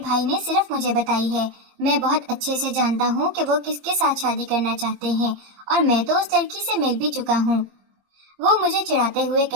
نے صرف مجھے بتائی ہے۔ میں بہت اچھے سے جانتا ہوں کہ وہ کس کے ساتھ شادی کرنا چاہتے ہیں، اور میں تو اس لڑکی سے مل بھی چکا ہوں۔ وہ مجھے چڑھاتے ہوئے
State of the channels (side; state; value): left; late; 21 ms